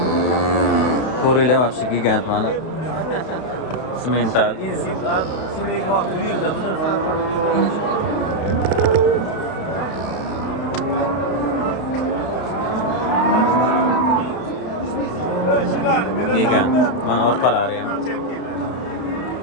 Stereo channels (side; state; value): right; late; 32 ms